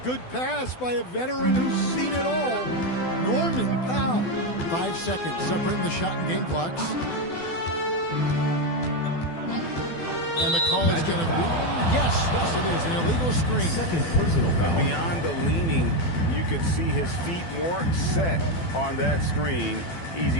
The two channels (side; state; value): right; late; 12 ms